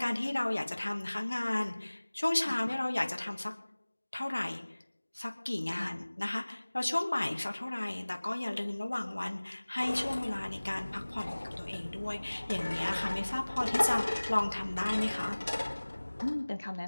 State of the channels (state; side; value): inverted; both; correlation -1.00